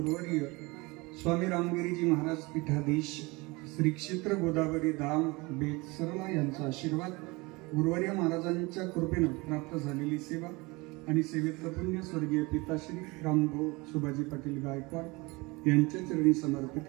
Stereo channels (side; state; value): left; quieter; 24.8 dB